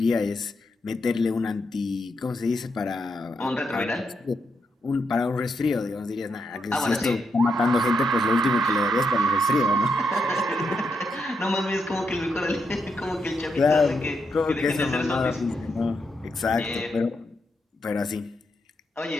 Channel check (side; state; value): both; normal; correlation 0.81